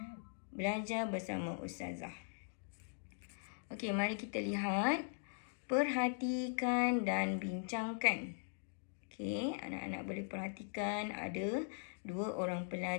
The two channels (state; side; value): silent; right; digital silence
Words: belajar bersama Ustazah. Okey, mari kita lihat. Perhatikan dan bincangkan. Okey, anak-anak boleh perhatikan ada dua orang